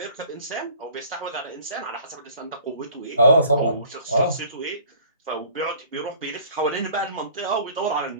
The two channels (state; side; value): inverted; both; correlation -0.50